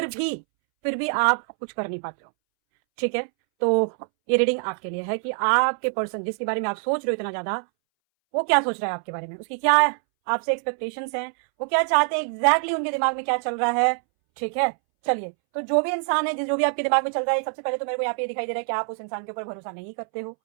फिर भी आप कुछ कर नहीं पाते हो। ठीक है, तो ये रीडिंग आपके लिए है कि आपके पर्सन जिसके बारे में आप सोच रहे हो इतना ज्यादा, वो क्या सोच रहा है आपके बारे में, उसकी क्या आपसे एक्सपेक्टेशंस हैं, वो क्या चाहते हैं एग्जैक्टली उनके दिमाग में क्या चल रहा है। ठीक है, चलिए, तो जो भी इंसान है जो भी आपके दिमाग में चल रहा है, सबसे पहले तो मेरे को यहाँ पे दिखाई दे रहा है कि आप उस इंसान के ऊपर भरोसा नहीं करते हो,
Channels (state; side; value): silent; left; 62 dB below the other